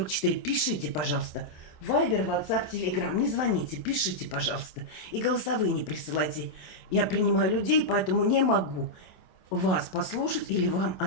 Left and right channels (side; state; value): right; late; 27 ms